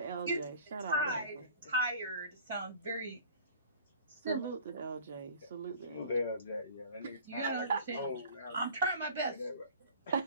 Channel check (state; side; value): inverted; both; correlation -0.46